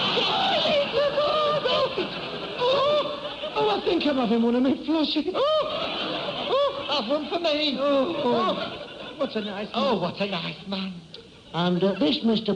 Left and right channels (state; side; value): identical; both; correlation 1.00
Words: Oh, I think I'm having one of me flushes. Have one for me. What a nice man. Oh, what a nice man. And this, Mr.